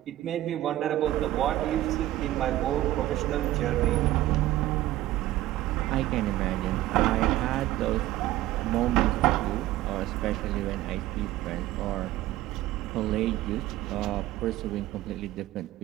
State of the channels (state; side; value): quieter; left; 15.2 dB